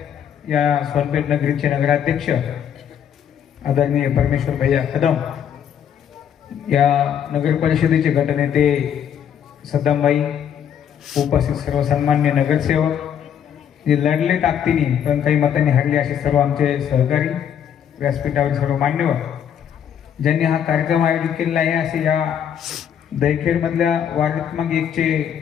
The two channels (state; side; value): quieter; right; 8.9 dB